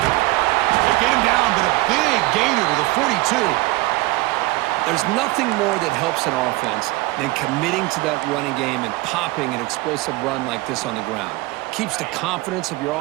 They get him down, but a big gainer to the 42. There's nothing more that helps an offense than committing to that running game and popping an explosive run like this on the ground. Keeps the confidence of your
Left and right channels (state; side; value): quieter; left; 20.7 dB